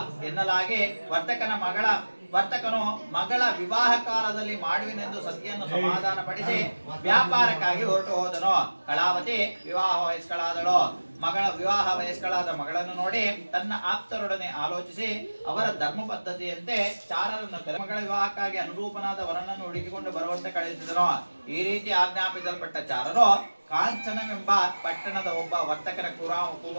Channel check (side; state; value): both; inverted; correlation -1.00